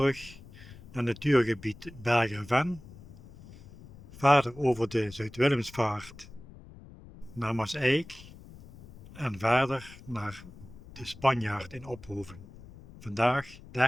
naar natuurgebied Bergen-Ven. Verder over de Zuid-Willemsvaart naar Maaseik en verder naar de Spanjaard in Ophoven. Vandaag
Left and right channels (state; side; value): noise; left; rumble, 19 dB below the sound